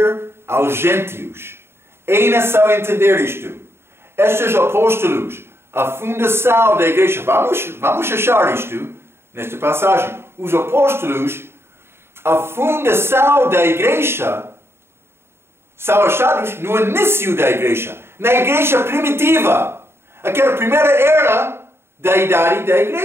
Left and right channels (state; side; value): late; left; 0.12 ms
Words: aos gentios. É necessário entender isto. Estes apóstolos, a fundação da igreja, vamos achar isto nesta passagem. Os apóstolos, a fundação da igreja, são achados no início da igreja, na igreja primitiva, aquela primeira era da idade da